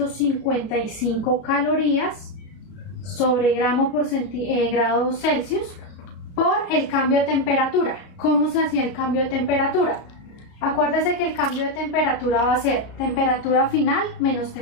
calorías sobre gramo por grado Celsius por el cambio de temperatura. ¿Cómo se hacía el cambio de temperatura? Acuérdese que el cambio de temperatura va a ser temperatura final menos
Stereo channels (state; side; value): late; right; 33 ms